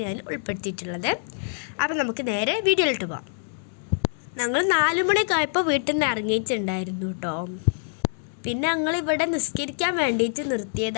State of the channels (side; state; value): right; silent; digital silence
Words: ഞാൻ ഉൾപ്പെടുത്തിയിട്ടുള്ളത്. അപ്പോൾ നമുക്ക് നേരെ വീഡിയോയിലോട്ട് പോകാം. ഞങ്ങൾ 4 മണിക്കായപ്പോൾ വീട്ടിൽ നിന്ന് ഇറങ്ങിയിട്ടുണ്ടായിരുന്നു കേട്ടോ. പിന്നെ ഞങ്ങളിവിടെ നിസ്കരിക്കാൻ വേണ്ടിയിട്ട്